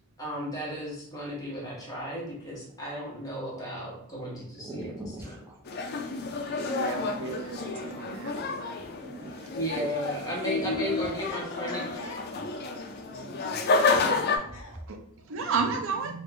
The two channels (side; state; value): both; normal; correlation 0.03